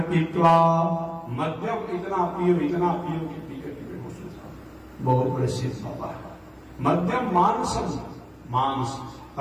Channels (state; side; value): identical; both; correlation 1.00